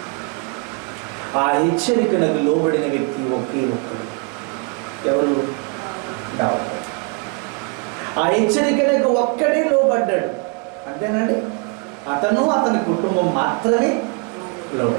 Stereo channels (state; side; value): quieter; left; 32.0 dB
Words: ఆ హెచ్చరికలకు లోబడిన వ్యక్తి ఒకే ఒక్కడు. ఎవరు? దావీదు. ఆ హెచ్చరికలకు ఒక్కడే లోబడ్డాడు. అంతేనండి. అతని కుటుంబం మాత్రమే